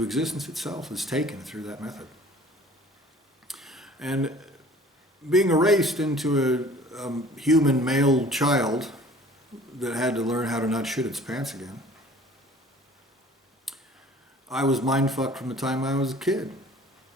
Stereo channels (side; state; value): both; normal; correlation 0.49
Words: existence itself is taken through that method. And being erased into a human male child that had to learn how to not shit its pants again, I was mind-fucked from the time I was a kid